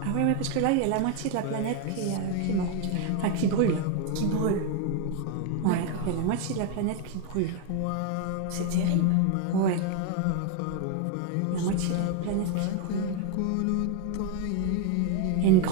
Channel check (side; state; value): both; different; correlation 0.01